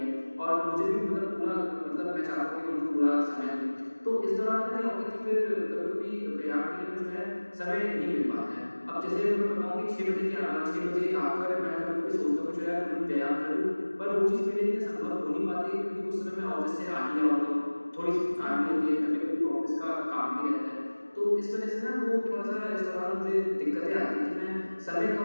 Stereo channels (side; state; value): both; inverted; correlation -1.00